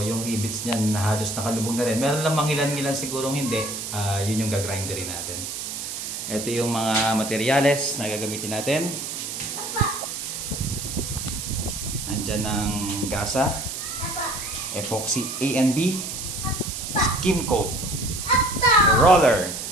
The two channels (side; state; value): right; noise; hiss, 6 dB below the sound